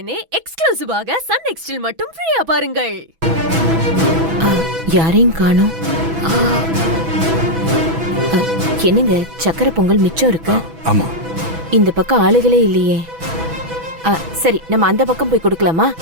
எக்ஸ்க்ளூசிவாக சன் நெக்ஸ்டில் மட்டும் ஃப்ரீயா பாருங்கள். யாரையும் காணோம். என்னங்க சக்கரை பொங்கல் மிச்சம் இருக்கு? ஆமா. இந்த பக்கம் ஆளுகளே இல்லையே. சரி, நம்ம அந்த பக்கம் போய் கொடுக்கலாமா?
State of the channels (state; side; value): late; left; 6.1 ms